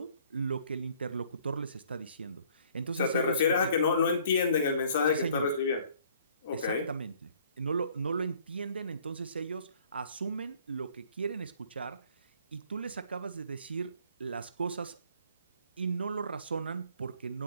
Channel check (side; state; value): both; inverted; correlation -0.58